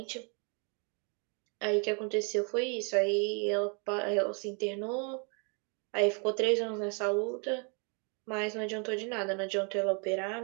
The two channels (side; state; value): left; quieter; 36.8 dB